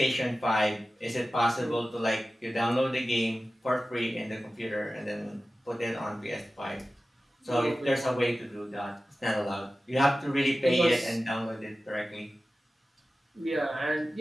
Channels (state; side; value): normal; both; correlation 0.95